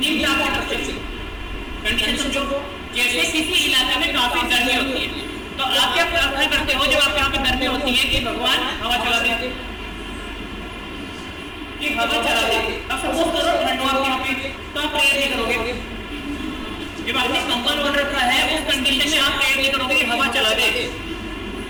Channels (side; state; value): both; identical; correlation 1.00